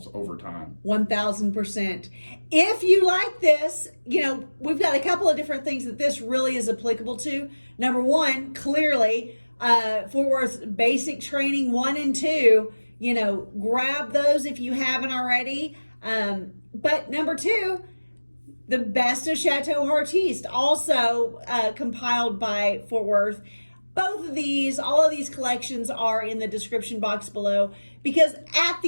over time. 1000%. If you like this, we've got a couple of different things that this really is applicable to. Number 1, clearly, Fort Worth basic training 1 and 2, grab those if you haven't already. But number 2, the best of CHATEAU HEARTISTE, also compiled by Fort Worth. All of these collections are in the description box below, because at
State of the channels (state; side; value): inverted; both; correlation -1.00